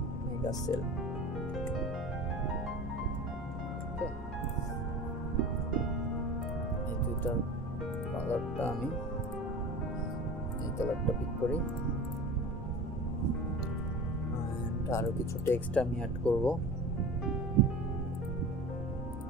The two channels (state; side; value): normal; both; correlation 0.35